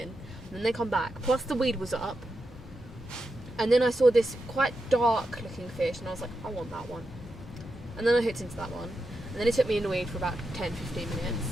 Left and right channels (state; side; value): normal; both; correlation 0.87